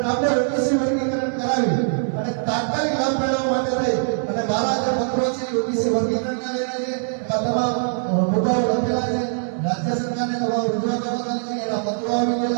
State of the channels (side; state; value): left; silent; digital silence